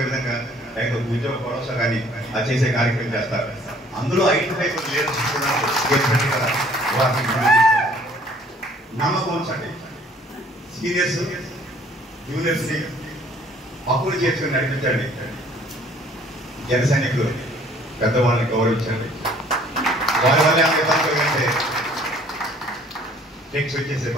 విధంగా లేకపోతే ఉద్యోగ భరోసా కానీ అది చేసే కార్యక్రమం చేస్తారు. అందులో ఐడెంటిఫై నమ్మకం ఉంచండి. సీనియర్స్ జూనియర్స్ని పక్కులు చేసుకుని నడిపించండి. జన సైనికులు పెద్దవాళ్ళని గౌరవించండి. వాళ్ళ వల్ల అంటే టెక్స్ వచ్చేసే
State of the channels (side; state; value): both; normal; correlation 0.57